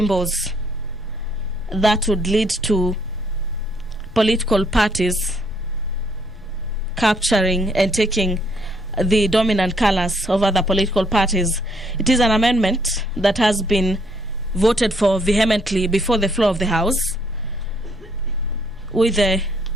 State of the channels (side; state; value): left; noise; rumble, 20 dB below the sound